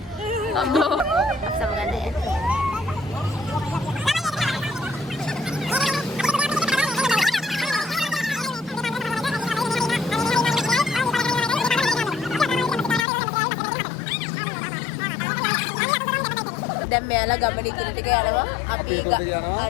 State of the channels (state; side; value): drops out; right; at 13.1 s